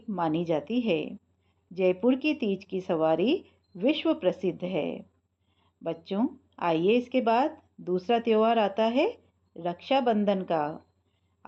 मानी जाती है। जयपुर की तीज की सवारी विश्व प्रसिद्ध है। बच्चों, आइए इसके बाद दूसरा त्योहार आता है रक्षाबंधन का।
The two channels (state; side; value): identical; both; correlation 1.00